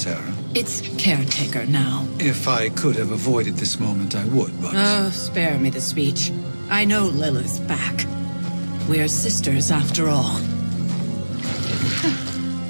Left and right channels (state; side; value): inverted; both; correlation -1.00